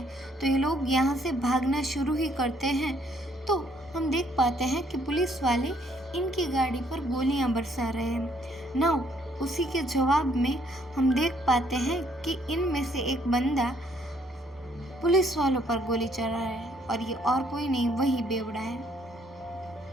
तो ये लोग यहाँ से भागना शुरू ही करते हैं। तो हम देख पाते हैं कि पुलिस वाले इनकी गाड़ी पर गोलियां बरसा रहे हैं। नाउ उसी के जवाब में हम देख पाते हैं कि इनमें से एक बंदा पुलिस वालों पर गोली चला रहा है और ये और कोई नहीं, वही बेवड़ा है।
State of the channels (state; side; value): normal; both; correlation 0.67